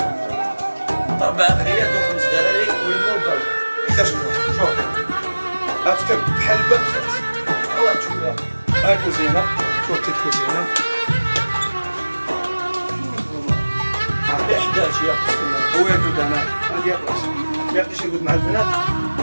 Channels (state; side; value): inverted; both; correlation -1.00